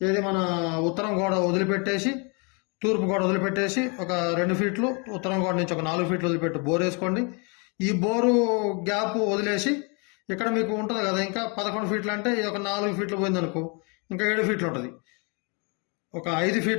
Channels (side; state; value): right; quieter; 33.9 dB